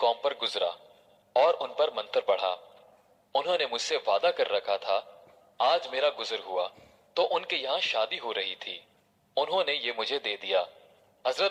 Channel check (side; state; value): both; identical; correlation 1.00